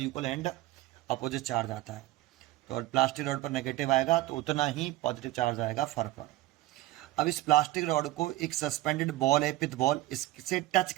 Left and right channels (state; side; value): quieter; left; 17.0 dB